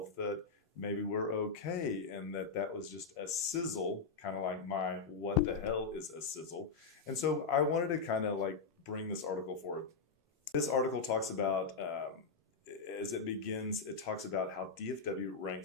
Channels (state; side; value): quieter; right; 4.9 dB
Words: that maybe we're okay, and that was just a sizzle, kind of like my what the hell is a sizzle. And so I wanted to kind of like bring this article forward. This article talks about, as it begins, it talks about how DFW